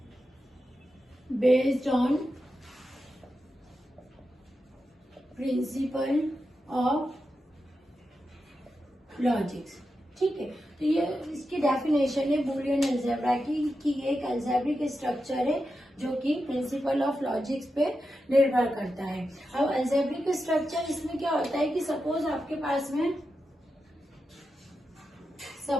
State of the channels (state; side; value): normal; both; correlation 0.89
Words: based on principle of logics। ठीक है, तो ये इसकी डेफिनेशन है बूलियन अलजेब्रा की कि ये एक अल्जेब्रिक स्ट्रक्चर है जो कि प्रिंसिपल ऑफ लॉजिक्स पे निर्भर करता है। अब अल्जेब्रिक स्ट्रक्चर इसमें क्या होता है कि सपोज आपके पास में